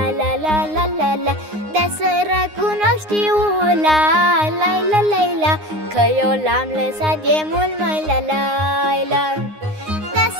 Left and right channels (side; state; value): left; late; 9.7 ms